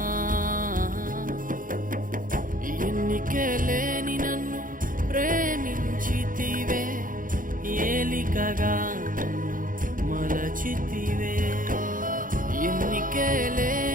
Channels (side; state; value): left; late; 0.40 ms